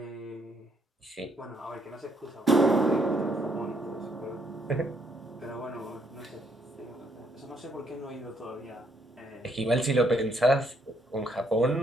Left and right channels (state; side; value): normal; both; correlation 0.71